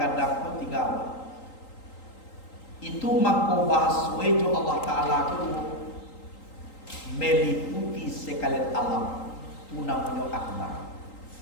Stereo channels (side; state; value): right; late; 3.8 ms